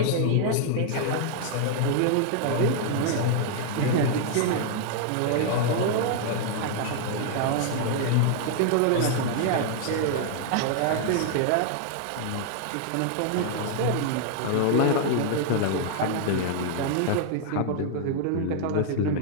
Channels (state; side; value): different; both; correlation -0.01